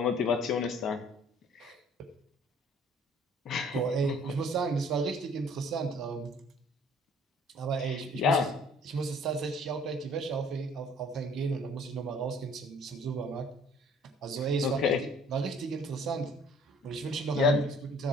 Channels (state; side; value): normal; both; correlation 0.55